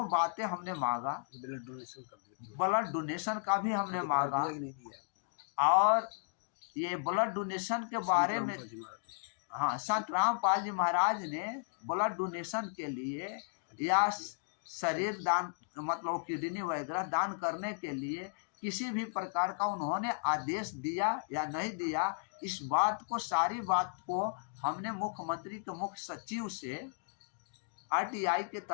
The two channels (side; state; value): right; silent; digital silence